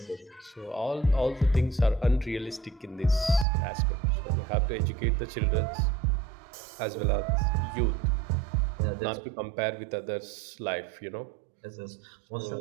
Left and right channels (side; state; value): left; drops out; at 3.5 s